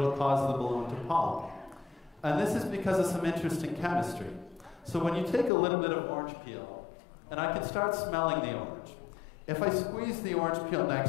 cause the balloon to pop. And this is because of some interesting chemistry. So when you take a little bit of orange peel, and I can start smelling the orange. If I squeeze the orange peel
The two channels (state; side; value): drops out; right; at 5.5 s